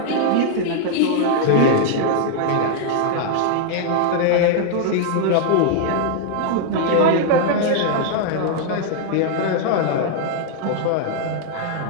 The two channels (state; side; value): different; both; correlation 0.00